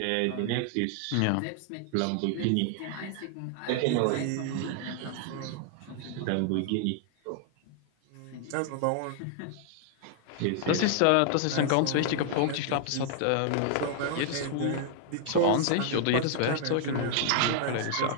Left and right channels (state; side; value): different; both; correlation 0.00